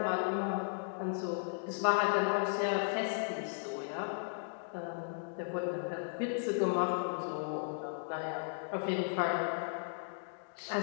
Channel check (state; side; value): silent; right; digital silence